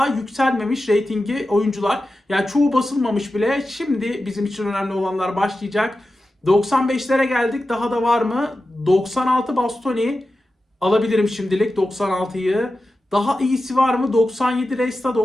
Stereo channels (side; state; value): both; normal; correlation 0.93